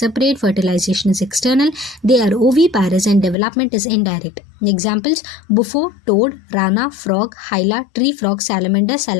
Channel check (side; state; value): right; drops out; at 3.4 s